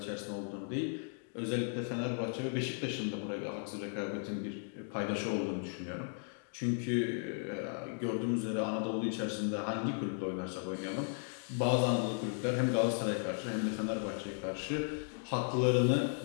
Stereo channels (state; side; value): silent; right; 54 dB below the other